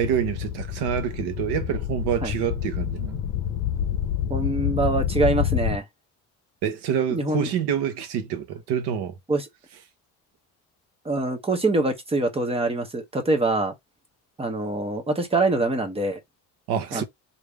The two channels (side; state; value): both; normal; correlation 0.30